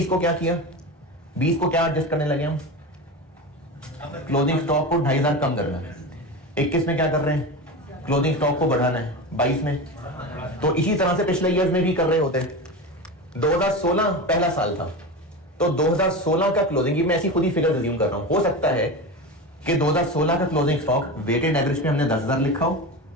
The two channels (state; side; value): normal; both; correlation 0.24